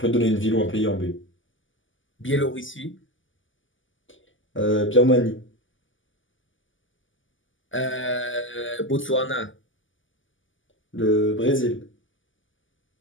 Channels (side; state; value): right; late; 0.57 ms